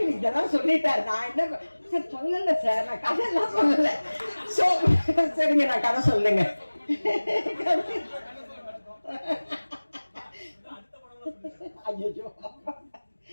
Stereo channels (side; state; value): both; inverted; correlation -1.00